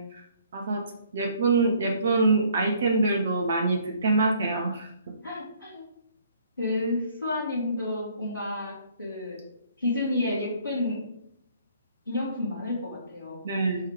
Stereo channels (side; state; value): both; inverted; correlation -0.60